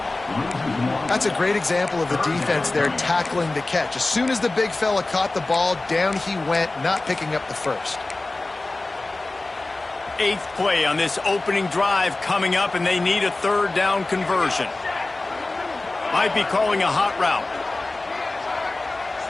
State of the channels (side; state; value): right; quieter; 3.1 dB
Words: That's a great example of the defense there tackling the catch. As soon as the big fella caught the ball, down he went, not picking up the first. 8th play on this opening drive coming up, and they need a 3rd down conversion. Might be calling a hot route.